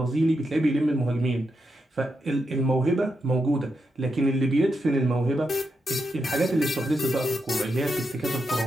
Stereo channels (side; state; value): both; normal; correlation 0.84